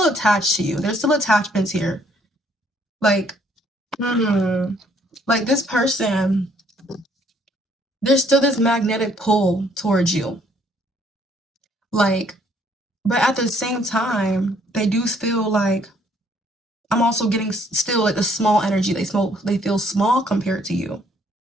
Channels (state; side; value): normal; both; correlation 0.65